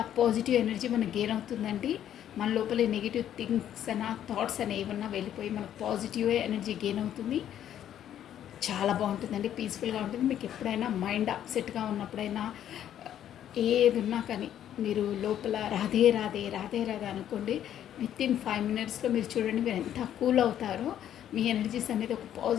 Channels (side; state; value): right; quieter; 10.7 dB